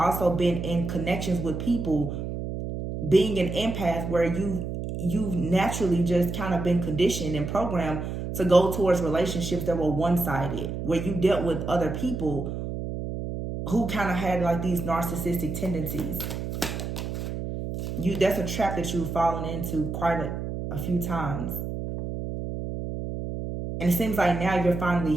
been in connections with people, being an empath, where you've naturally just kind of been conditioned and programmed to go towards relationships that were one-sided, where you dealt with other people who kind of had like these narcissistic tendencies. That's a trap that you've fallen into quite a few times. And it seems like now you're finally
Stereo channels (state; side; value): noise; right; hum, 5 dB below the sound